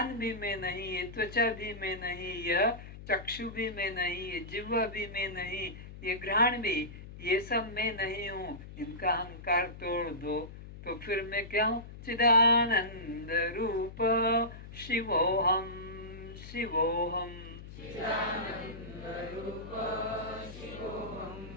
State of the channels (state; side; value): noise; left; hum, 14 dB below the sound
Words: भी मैं नहीं, ये त्वचा भी मैं नहीं, यह चक्षु भी मैं नहीं, ये जिह्वा भी मैं नहीं, ये घ्राण भी, ये सब मैं नहीं हूँ। इनका अहंकार तोड़ दो, तो फिर मैं क्या हूँ? चिदानंद रूप शिवोहम शिवोहम।